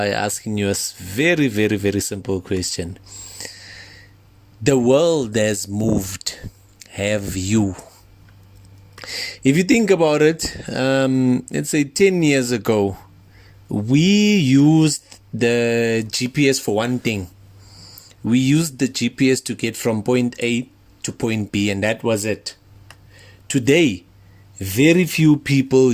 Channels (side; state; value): both; identical; correlation 1.00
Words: asking you a very simple question. The world has moved. Have you? If you think about it, let's say 10 years ago, we used the GPS for one thing. We used the GPS to get from point A to point B, and that was it. Today, very few people